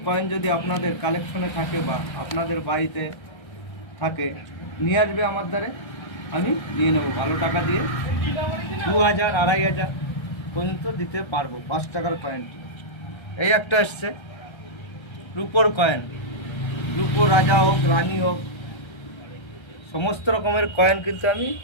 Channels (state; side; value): late; right; 1.3 ms